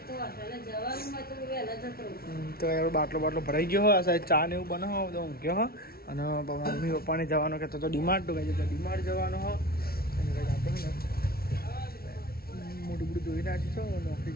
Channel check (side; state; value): right; late; 0.44 ms